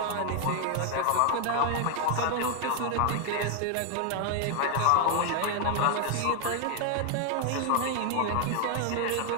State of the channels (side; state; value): both; different; correlation 0.00